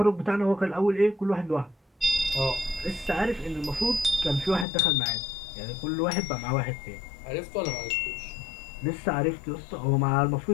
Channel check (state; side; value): drops out; right; at 4.7 s